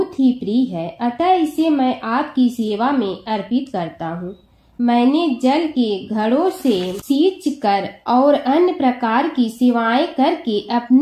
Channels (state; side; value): identical; both; correlation 1.00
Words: ही प्रिय है, अतः इसे मैं आपकी सेवा में अर्पित करता हूँ। मैंने जल के घड़ों से सींच कर और अन्य प्रकार की सेवाएं करके